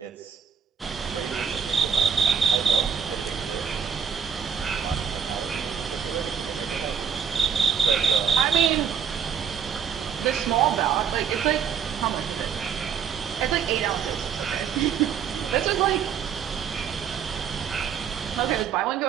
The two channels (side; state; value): left; quieter; 7.3 dB